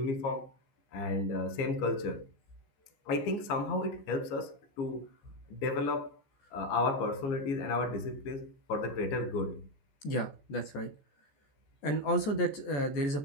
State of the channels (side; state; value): right; late; 14 ms